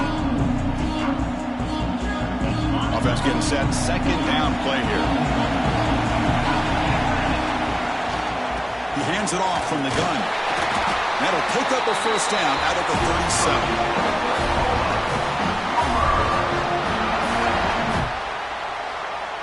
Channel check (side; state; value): both; identical; correlation 1.00